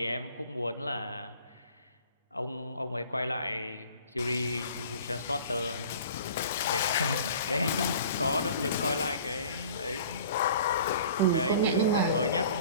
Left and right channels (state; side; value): inverted; both; correlation -0.47